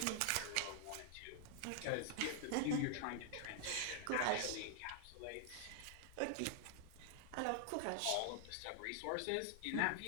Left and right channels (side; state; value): both; different; correlation 0.00